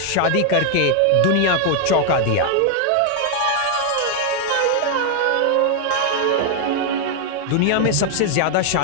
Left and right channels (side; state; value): both; different; correlation 0.00